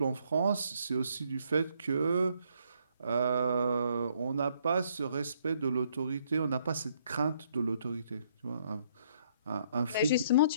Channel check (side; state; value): both; inverted; correlation -0.69